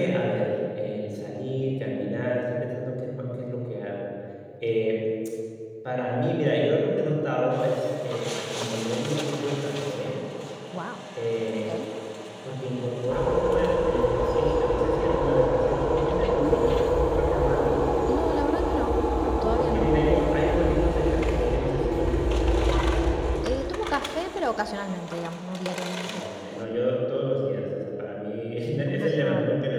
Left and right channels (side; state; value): both; identical; correlation 1.00